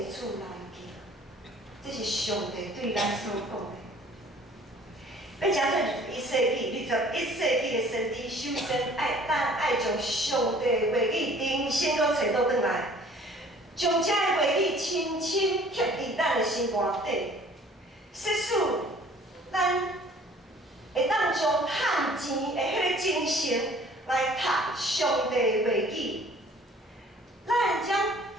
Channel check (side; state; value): both; normal; correlation 0.53